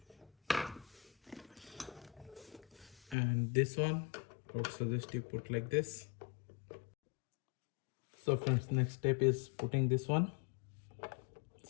And this one, I would suggest you put like this. So friends, next step is putting this one.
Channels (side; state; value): right; drops out; at 3.2 s